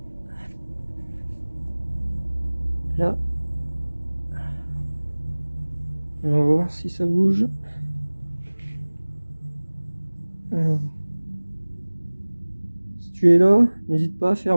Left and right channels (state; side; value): inverted; both; correlation -1.00